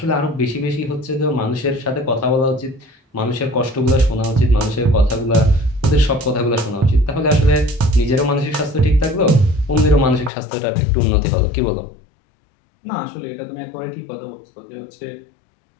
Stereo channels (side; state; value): right; drops out; at 10.3 s